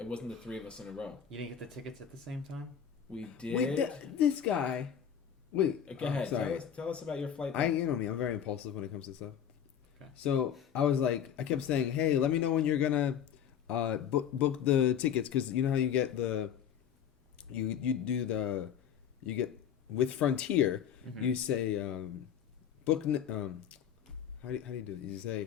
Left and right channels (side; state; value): right; quieter; 8.8 dB